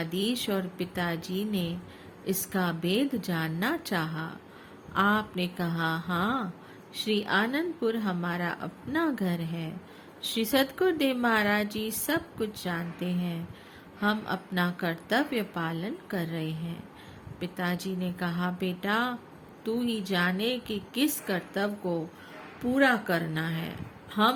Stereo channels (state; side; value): identical; both; correlation 1.00